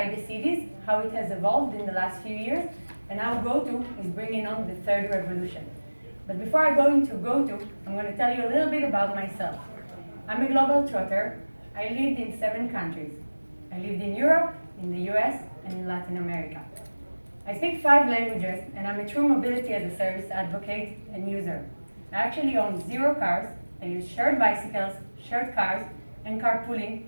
the cities, how it has evolved in the last few years, and how GoTo is bringing on the third revolution. But before I go into GoTo, I'm going to tell you a little bit about myself. I'm a global trotter. I lived in 7 countries. I lived in Europe, in the US, and in Latin America. I speak 5 languages, and I'm a true mobility as a service advocate and user. I actually own 0 cars. I use shared bicycles, shared cars, and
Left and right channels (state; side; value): inverted; both; correlation -1.00